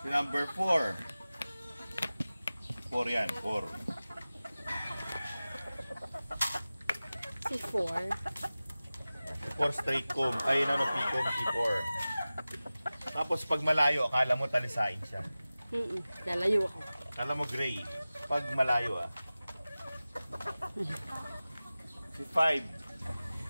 si number 4. 4 yan, 4. Si 4. 4 straight comb. Ay, P-comb, C4. Tapos pag malayo, akala mo talisain siya. Lalayo ako. Akala mo gray. Pag malayo, Si 5.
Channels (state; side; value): inverted; both; correlation -0.97